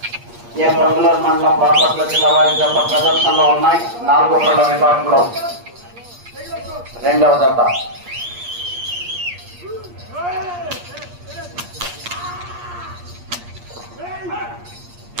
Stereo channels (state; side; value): late; left; 8.5 ms